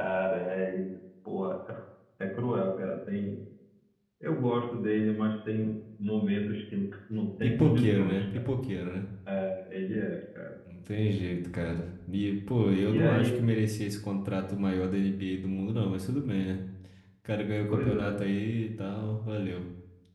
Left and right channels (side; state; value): both; identical; correlation 1.00